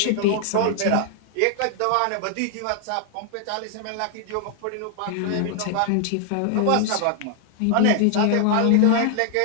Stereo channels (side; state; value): both; different; correlation 0.00